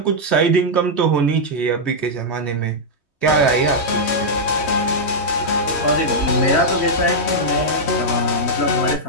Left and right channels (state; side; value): late; right; 3.2 ms